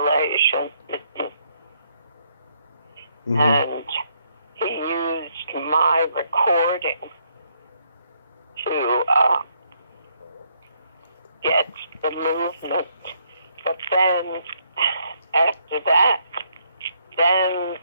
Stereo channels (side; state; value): both; inverted; correlation -0.72